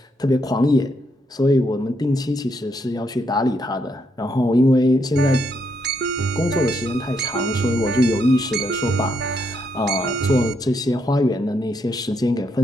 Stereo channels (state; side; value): normal; both; correlation 0.77